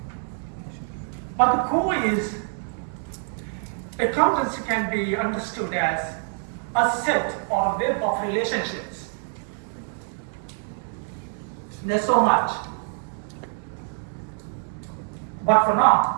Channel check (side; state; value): left; silent; 58 dB below the other